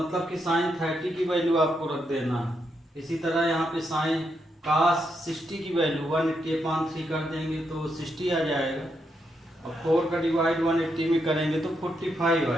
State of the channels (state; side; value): normal; both; correlation 0.81